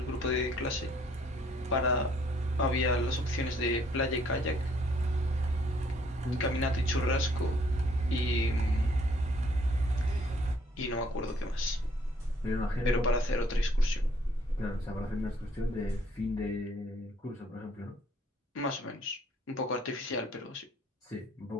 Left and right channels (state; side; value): normal; both; correlation 0.64